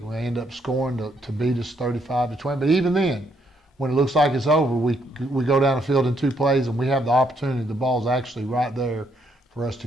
we end up scoring to beat us 35-20. But even then, when it looks like it's over, we go down the field in 2 plays, and we have the opportunity. The ball's actually right there for us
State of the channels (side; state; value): both; normal; correlation 0.73